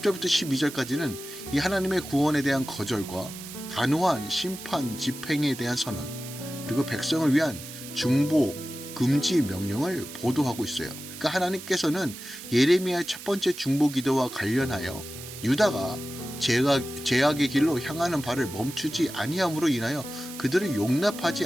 12절까지는 이 하나님의 구원에 대한 거절과 단호한 심판 집행에 대한 선언, 그리고 백성을 위한 중보, 금지 명령을 보도하고 있어요. 그러니까 하나님께서는 예레미야의 첫 번째 중보 기도와 관련하여 유다가 죄악의 길로 향하는 바를 멈추지 아니함으로 인하여 그들을 용납하지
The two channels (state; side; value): noise; right; hiss, 13 dB below the sound